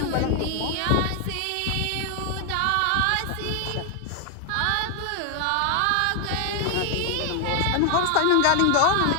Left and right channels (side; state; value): both; different; correlation 0.01